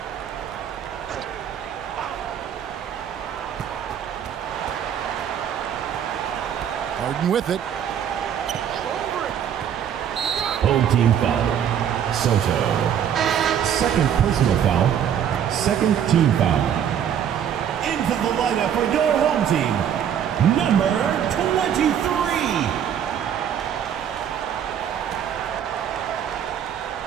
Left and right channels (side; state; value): left; quieter; 9.0 dB